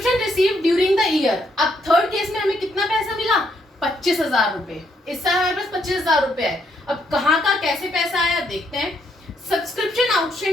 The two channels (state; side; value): normal; both; correlation 0.74